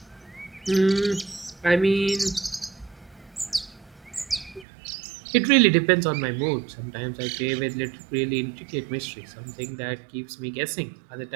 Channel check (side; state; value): left; drops out; at 4.7 s